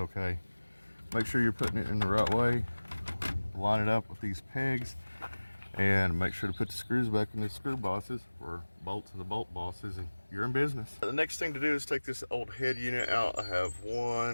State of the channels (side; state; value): both; inverted; correlation -1.00